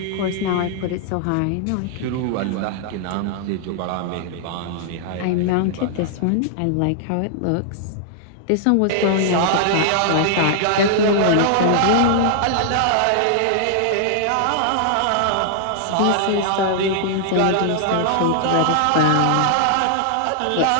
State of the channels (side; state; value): both; different; correlation -0.01